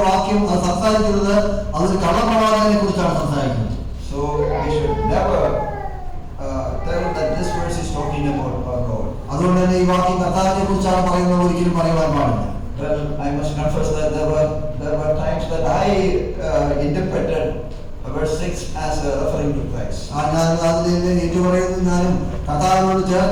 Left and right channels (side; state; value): both; identical; correlation 1.00